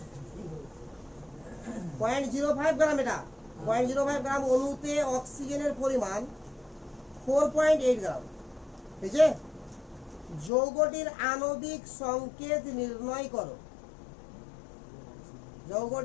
0.05 গ্রাম, এটা 0.05 গ্রাম অণুতে অক্সিজেনের পরিমাণ 4.8 গ্রাম। ঠিক আছে, যৌগটির আণবিক সংকেত নির্ণয় করো।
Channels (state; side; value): drops out; right; at 10.5 s